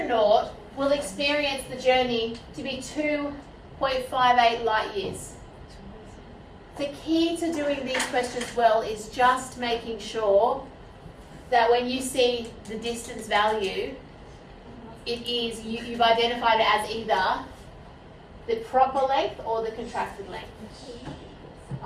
will experience the journey to be 2.58 light years. The key to doing these questions well is just making sure that when you see the distance value, you've identified it as either the proper length or the contracted length.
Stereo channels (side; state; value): both; identical; correlation 1.00